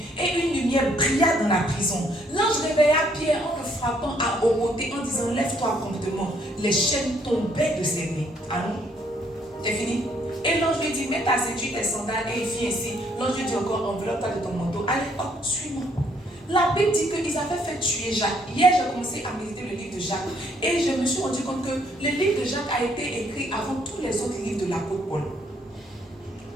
et une lumière brilla dans la prison. L'ange réveilla Pierre en le frappant à omoter, en disant, lève-toi promptement. Les chaînes tombaient de ses mains. Allons. C'est fini. Et l'ange lui dit, mets ta ceinture, tes sandales, et il fit ainsi. L'ange lui dit encore, enveloppe-toi de ton manteau. Allez, hop, suis-moi. La Bible dit qu'ils avaient fait tuer Jacques. Hier, j'ai commencé à méditer le livre de Jacques. Et je me suis rendu compte que le livre de Jacques a été écrit avant tous les autres livres de l'apôtre Paul.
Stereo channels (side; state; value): both; normal; correlation 0.67